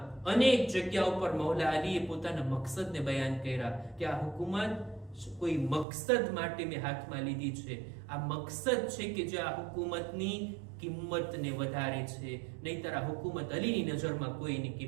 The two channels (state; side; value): drops out; left; at 5.9 s